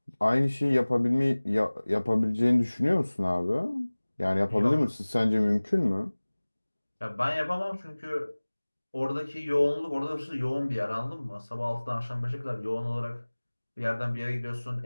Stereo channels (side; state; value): both; inverted; correlation -1.00